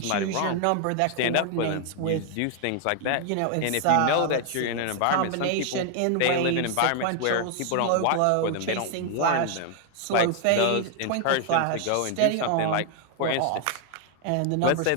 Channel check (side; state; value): both; different; correlation 0.00